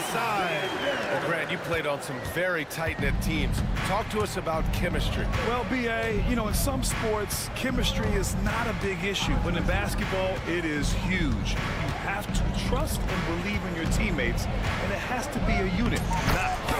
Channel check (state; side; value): identical; both; correlation 1.00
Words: Well, Grant, you played on some very tight-knit teams. Talk to us about chemistry. Well, B.A., you know, in some sports, chemistry is not a big issue, but in basketball, it is huge. You have to trust and believe in your teammates, and it has to be a unit, not